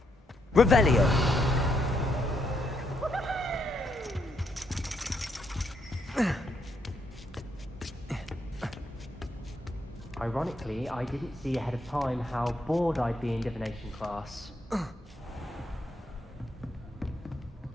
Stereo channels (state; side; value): normal; both; correlation 0.76